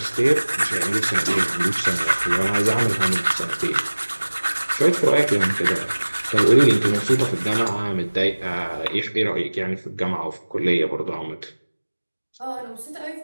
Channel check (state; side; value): inverted; both; correlation -1.00